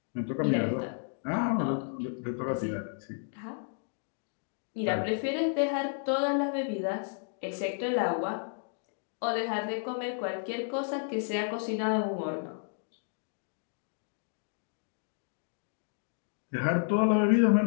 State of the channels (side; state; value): right; silent; digital silence